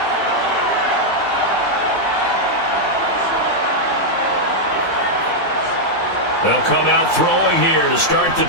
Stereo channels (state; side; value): normal; both; correlation -0.03